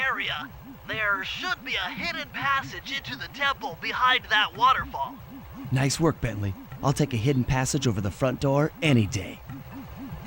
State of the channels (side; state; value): both; identical; correlation 1.00